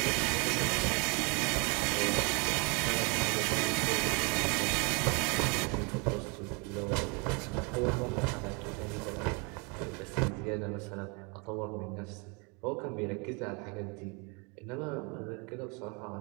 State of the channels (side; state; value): left; quieter; 31.7 dB